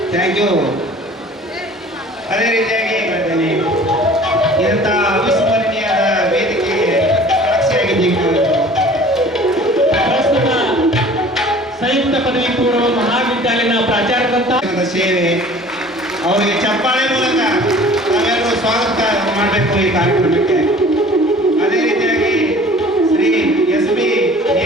ಥ್ಯಾಂಕ್ ಯು. ಅದೇ ರೀತಿಯಾಗಿ ಹೇಳ್ತೇನೆ, ಇಂಥ ಅವಿಸ್ಮರಣೀಯದ ವೇದಿಕೆಗೆ ಸಾಕ್ಷಿಯಾಗಿದ್ದೀವಿ. ಪ್ರಸ್ತುತ ಸಂಯುಕ್ತ ಪದವಿ ಪೂರ್ವ ಮಹಾವಿದ್ಯಾಲಯದ ಪ್ರಾಚಾರ್ಯರಂತ ಸೇವೆ ಅವರಿಗೆ ಚಪ್ಪಾಳೆ ಮೂಲಕ ನಾವೆಲ್ಲರೂ ಸ್ವಾಗತ ಮಾಡಬೇಕು ಈ ಕಾರ್ಯಕ್ರಮಕ್ಕೆ. ಅದೇ ರೀತಿಯಾಗಿ ಶ್ರೀ SP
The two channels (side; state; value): both; normal; correlation 0.47